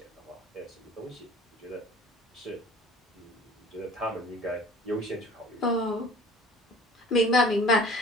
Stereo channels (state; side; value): normal; both; correlation 0.46